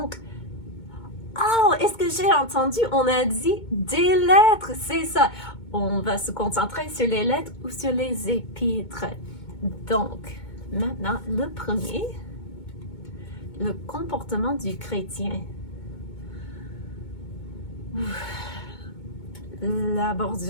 oh, est-ce que j'ai entendu? On a dit des lettres, c'est ça. On va se concentrer sur les lettres ou sur les épîtres. Donc, maintenant, le premier, le comportement du chrétien. La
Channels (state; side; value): late; right; 2.2 ms